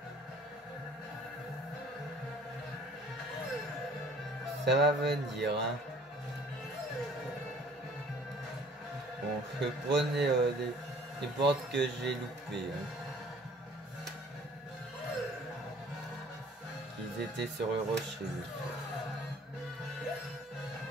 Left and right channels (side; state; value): both; normal; correlation 0.53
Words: Ça va venir, hein. Bon, je prenais les portes que j'ai loupées. Hein. Ils étaient sur le rocher.